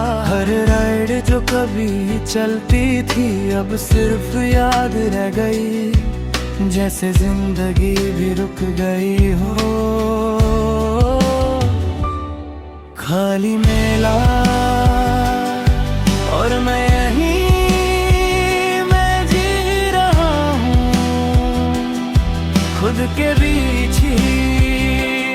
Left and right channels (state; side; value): identical; both; correlation 1.00